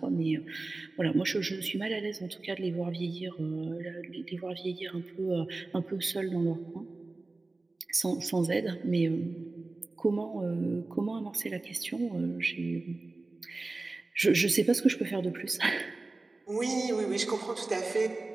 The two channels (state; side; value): quieter; left; 3.3 dB